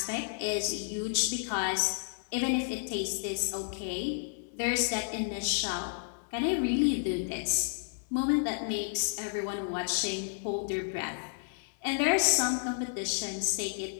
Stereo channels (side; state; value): right; silent; 57 dB below the other